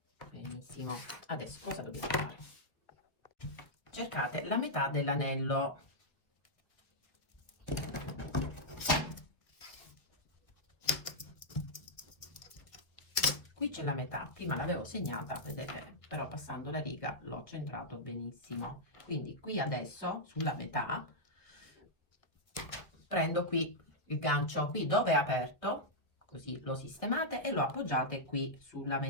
Benissimo. Adesso cosa dobbiamo fare? Cercate la metà dell'anello. Qui c'è la metà, prima l'avevo segnata, vedete, però passando la riga l'ho centrato benissimo. Quindi qui adesso, sulla metà, prendo qui il gancio qui dove è aperto, così lo sistemate e lo appoggiate qui sulla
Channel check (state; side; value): late; right; 1.4 ms